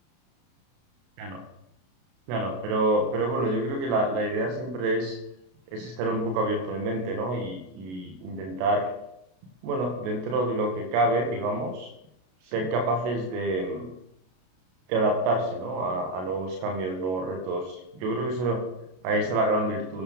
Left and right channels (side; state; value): left; late; 32 ms